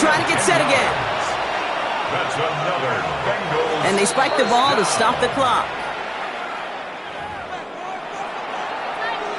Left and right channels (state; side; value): identical; both; correlation 1.00